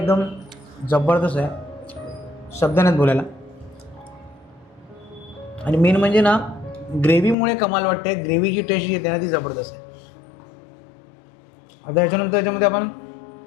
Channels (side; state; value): right; drops out; at 7.4 s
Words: जबरदस्त आहे, शब्द नाहीत बोलायला. आणि मेन म्हणजे ना ग्रेव्हीमुळे कमाल वाटते. ग्रेव्हीची टेस्ट जी येते ना ती जबरदस्त आहे. आता याच्यानंतर याच्यामध्ये आपण